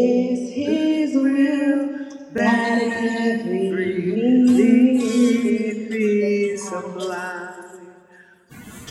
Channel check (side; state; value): both; identical; correlation 1.00